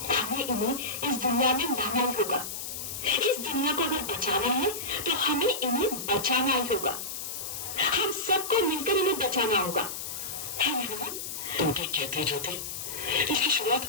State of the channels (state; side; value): noise; left; hiss, 6 dB below the sound